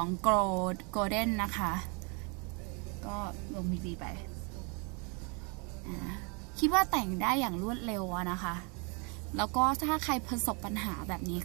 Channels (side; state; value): left; quieter; 33.2 dB